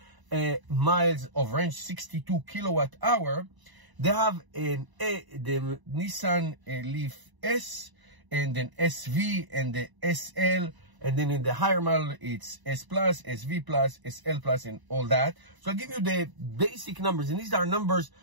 miles of range, 62 kilowatt hour. They have the Nissan Leaf S, and then SV, and the SL. And then in the higher model, it's S Plus, SV Plus, SL Plus, and all that. So I'll give you the basic numbers. And these are numbers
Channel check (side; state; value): left; late; 1.0 ms